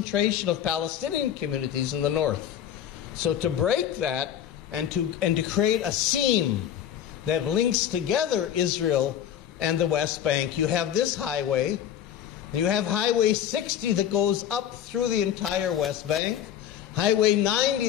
of Palestinian communities in the north. So to break that and to create a seam that links together Israel and the West Bank, you have this highway. You have Highway 60 that goes up through the entire West Bank, Highway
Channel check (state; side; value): quieter; right; 10.0 dB